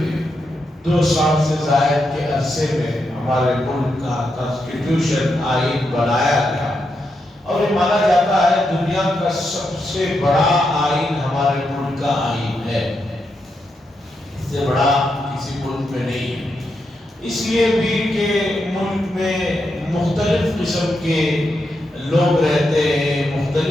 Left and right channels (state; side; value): normal; both; correlation 0.84